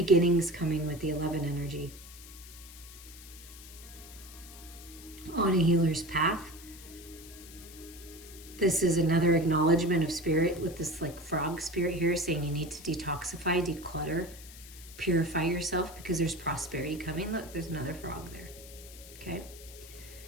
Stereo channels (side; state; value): left; noise; hiss, 17 dB below the sound